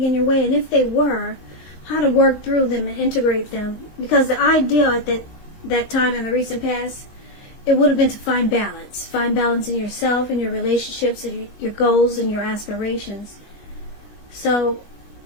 in your way, and if they were, how to work through them and integrate them. Because the ideal at that time in the recent past, it would have been to find balance. Find balance in yourself and your relationships and your goals and your aspirations. So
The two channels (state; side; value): late; right; 19 ms